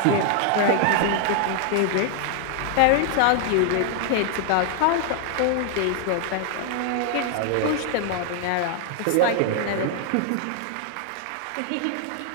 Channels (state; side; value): different; both; correlation 0.00